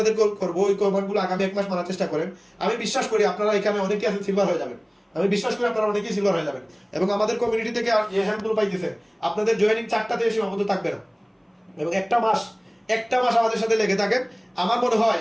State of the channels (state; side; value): identical; both; correlation 1.00